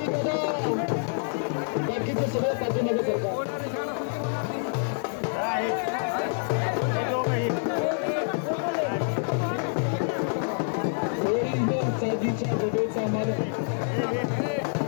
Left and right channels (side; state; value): right; silent; 60 dB below the other